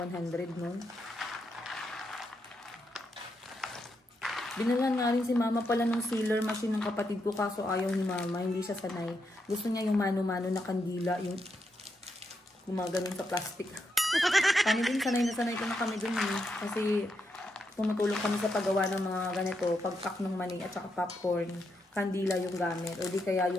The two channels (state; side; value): normal; both; correlation 0.82